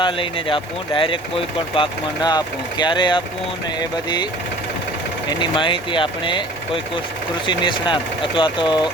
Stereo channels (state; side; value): normal; both; correlation 0.47